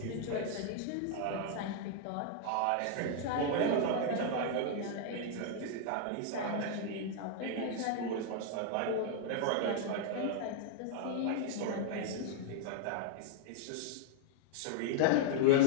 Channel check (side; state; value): both; different; correlation -0.01